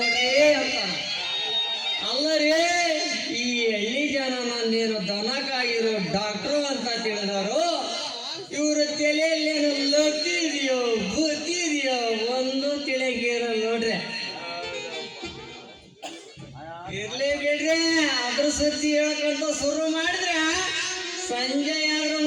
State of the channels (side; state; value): both; identical; correlation 1.00